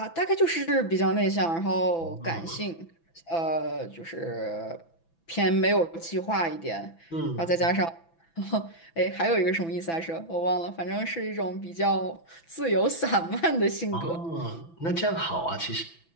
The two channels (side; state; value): right; late; 6.0 ms